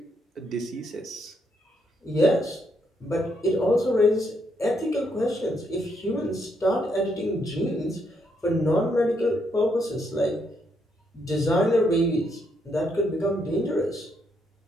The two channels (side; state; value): both; normal; correlation 0.76